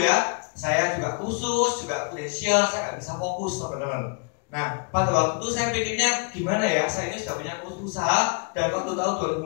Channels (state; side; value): quieter; right; 35.5 dB